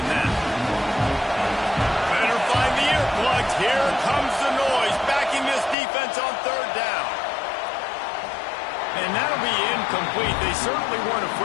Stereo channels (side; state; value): right; drops out; at 5.8 s